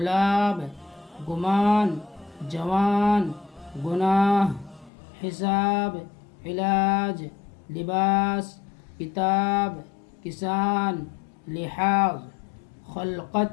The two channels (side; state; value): right; drops out; at 4.9 s